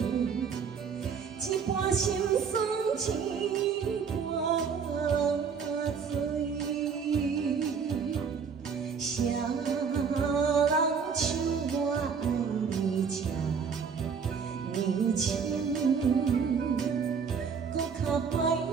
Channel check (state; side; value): quieter; left; 6.1 dB